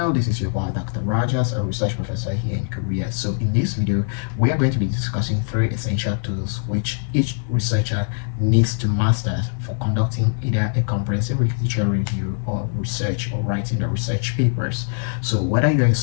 This is your boy Dr. Rajas, a research professor here in Korea. So in this video, we are going to be discussing 3 essential tools which each researcher needs to master for conducting either a comprehensive literature review or research or writing the research papers. So whether you're a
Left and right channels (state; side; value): silent; right; digital silence